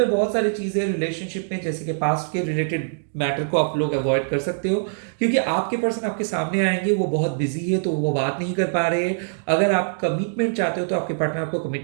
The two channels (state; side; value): silent; left; digital silence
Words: बहुत सारी चीज़ें रिलेशनशिप में, जैसे कि पास्ट के रिलेटेड मैटर को आप लोग अवॉइड कर सकते हो, क्योंकि आपके पर्सन आपके सामने आएंगे, वो बहुत बिजी है तो वो बात नहीं कर पा रहे हैं। अगर आप कमिटमेंट चाहते हो तो आपके पार्टनर आपको